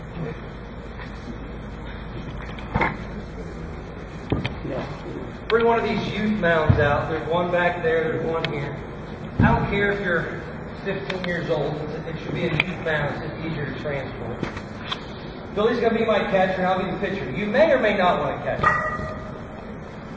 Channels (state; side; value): identical; both; correlation 1.00